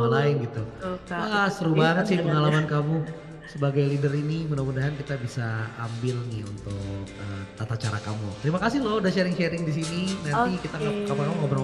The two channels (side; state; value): both; identical; correlation 1.00